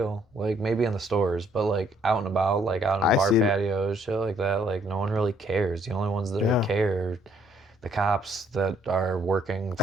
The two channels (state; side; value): normal; both; correlation 0.66